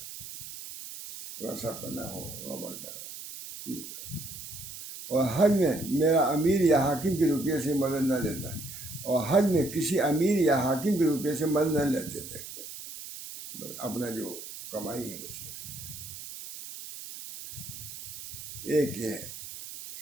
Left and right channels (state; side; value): noise; right; hiss, 11 dB below the sound